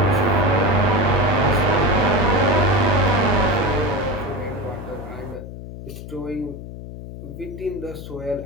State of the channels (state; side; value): noise; left; hum, 12 dB below the sound